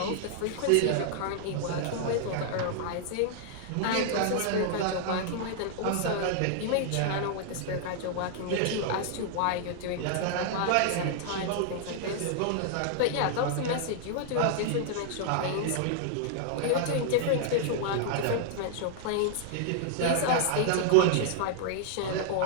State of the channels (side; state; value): both; different; correlation -0.01